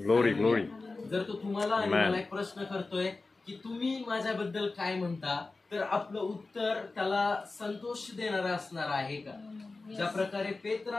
जर तो तुम्हाला आणि मला एक प्रश्न करतोय की तुम्ही माझ्याबद्दल काय म्हणता, तर आपलं उत्तर त्याला संतोष देणारं असणार आहे का? ज्या प्रकारे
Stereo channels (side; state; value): right; quieter; 3.6 dB